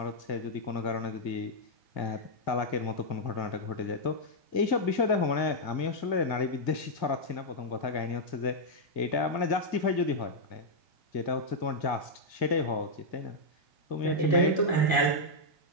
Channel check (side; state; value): right; late; 2.0 ms